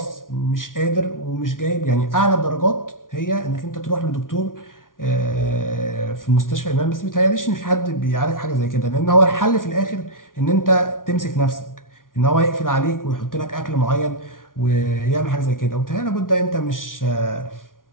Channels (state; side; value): late; right; 0.89 ms